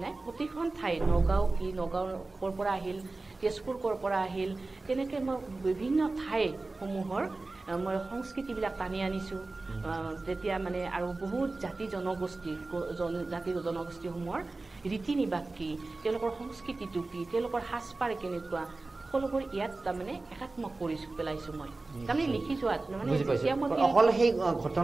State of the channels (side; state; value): left; quieter; 3.3 dB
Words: নাই প্ৰতিখন ঠাই নগাঁও ক'ৰ পৰা আহিল তেজপুৰ ক'ৰ পৰা আহিল তেনেকৈ মই বিভিন্ন ঠাইসমূহৰ মই সংস্কৃতিবিলাক টানি আনিছোঁ যেতিয়া মানে আৰু বহুত জাতি জনগোষ্ঠীসমূহৰ ৰীতি নিবাস কি তেওঁলোকৰ সংস্কৃতিটো কি তেওঁলোকৰ সাজপাৰ কেনেকুৱা সকলোবোৰ ইয়াত তাৰমানে একাত্মক কৰি পেলাইছোঁ মই তাৰমানে লিখি যোৱাত মানে অকল সেই